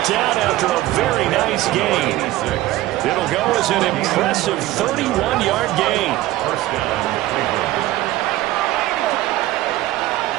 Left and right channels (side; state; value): left; quieter; 16.1 dB